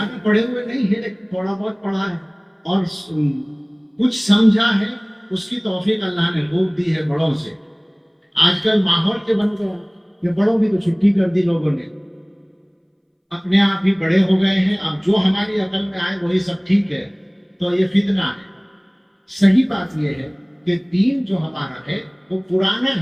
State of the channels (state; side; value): identical; both; correlation 1.00